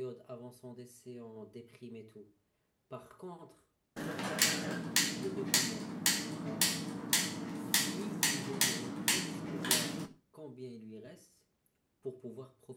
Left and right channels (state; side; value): identical; both; correlation 1.00